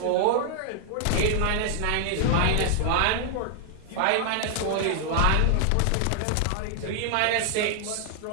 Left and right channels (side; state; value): both; different; correlation 0.00